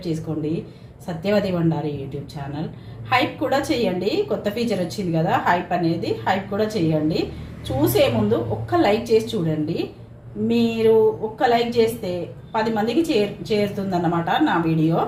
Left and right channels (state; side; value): identical; both; correlation 1.00